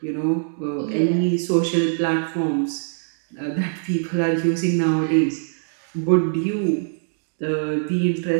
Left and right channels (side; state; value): left; silent; digital silence